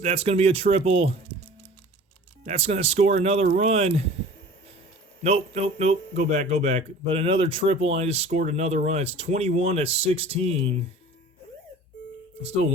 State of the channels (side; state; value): both; normal; correlation 0.43